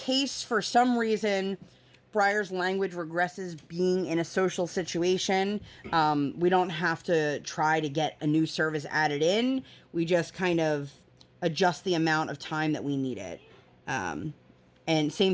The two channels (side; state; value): both; identical; correlation 1.00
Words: for some reason Briar's language regresses being in a social situation, we don't have to try to get a new service added in. We just kind of adjust the amount of time that we need it. And